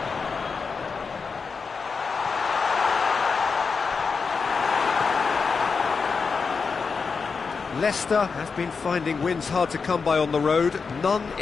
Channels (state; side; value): quieter; right; 5.1 dB